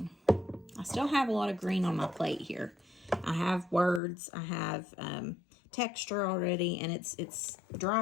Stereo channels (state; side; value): drops out; right; at 4.0 s